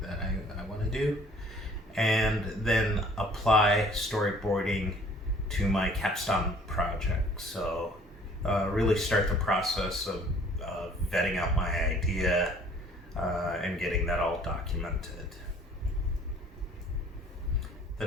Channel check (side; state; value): both; normal; correlation 0.55